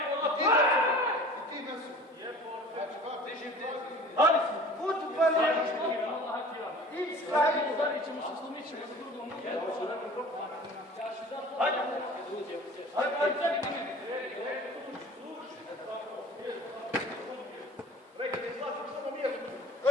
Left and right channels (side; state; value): both; normal; correlation 0.43